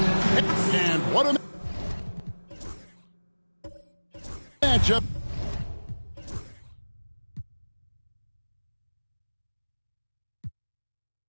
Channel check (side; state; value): both; inverted; correlation -1.00